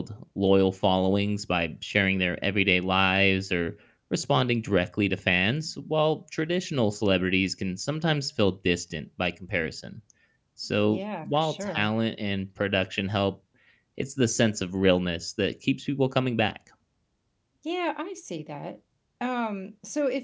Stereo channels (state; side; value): identical; both; correlation 1.00